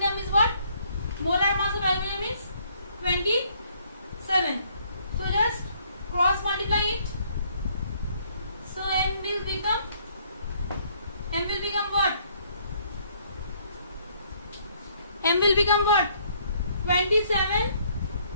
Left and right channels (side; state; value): both; inverted; correlation -0.65